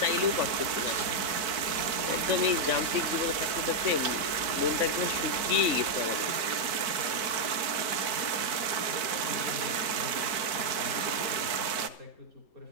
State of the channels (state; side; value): late; left; 4.5 ms